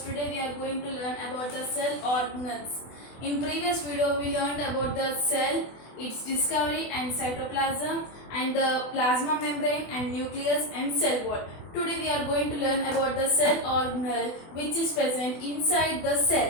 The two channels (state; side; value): late; right; 24 ms